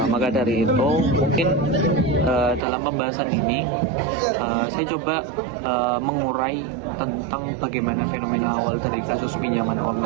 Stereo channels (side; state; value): left; drops out; at 2.6 s